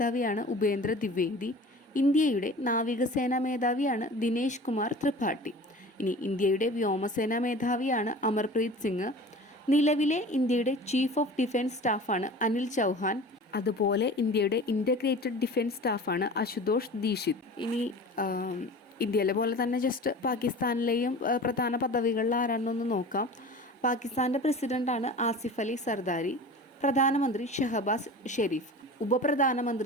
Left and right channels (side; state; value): both; normal; correlation 0.38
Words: ഉപേന്ദ്ര ദ്വിവേദി. ഇന്ത്യയുടെ നാവികസേനാ മേധാവിയാണ് ദിനേശ് കുമാർ ത്രിപാഠി. ഇനി ഇന്ത്യയുടെ വ്യോമസേനാ മേധാവിയാണ് അമർപ്രീത് സിംഗ്. നിലവിലെ ഇന്ത്യയുടെ ചീഫ് ഓഫ് ഡിഫൻസ് സ്റ്റാഫാണ് അനിൽ ചൗഹാൻ. അതുപോലെ ഇന്ത്യയുടെ ഇൻ്റഗ്രേറ്റഡ് ഡിഫൻസ് സ്റ്റാഫാണ് അശുതോഷ് ദീക്ഷിത്. ഇനി ഇന്ത്യയിലെ പോലെ തന്നെ ജസ്റ്റ് പാകിസ്ഥാനിലെയും പ്രധാന പദവികളിൽ ആരാണെന്നൊന്ന് നോക്കാം. പാകിസ്ഥാൻ്റെ പ്രസിഡൻ്റാണ് ആസിഫ് അലി സർദാരി. പ്രധാനമന്ത്രി ഷഹബാസ് ഷെരീഫ്.